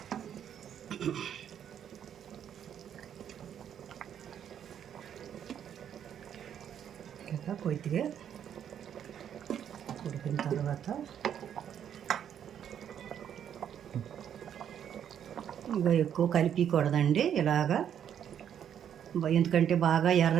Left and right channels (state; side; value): quieter; left; 9.2 dB